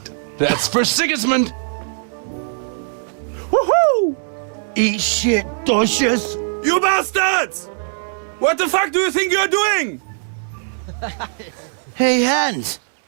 That's for Sigismund. Woohoo! Eat shit, Docious. You bastards! What the fuck do you think you're doing? Hey, Hans,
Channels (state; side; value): silent; left; digital silence